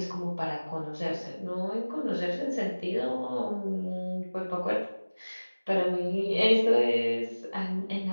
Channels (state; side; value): inverted; both; correlation -1.00